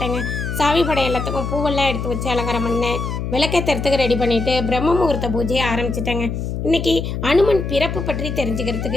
சாமி படம் எல்லாத்துக்கும் பூவெல்லாம் எடுத்து வச்சு அலங்காரம் பண்ணேன். விளக்கேற்றுறதுக்கு ரெடி பண்ணிவிட்டு பிரம்ம முகூர்த்த பூஜையை ஆரம்பிச்சிட்டேங்க. இன்றைக்கி அனுமன் பிறப்பு பற்றி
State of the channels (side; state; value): left; noise; hum, 4 dB below the sound